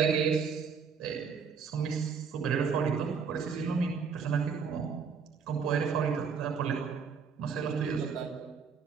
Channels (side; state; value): left; quieter; 6.0 dB